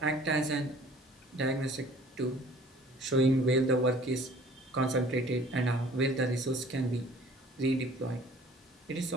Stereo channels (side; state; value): both; normal; correlation 0.52